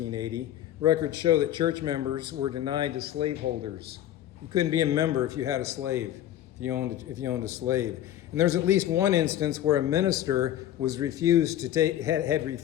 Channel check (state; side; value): quieter; right; 12.1 dB